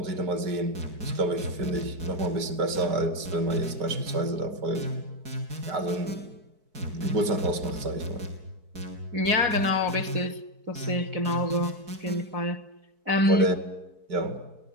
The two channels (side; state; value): left; late; 4.6 ms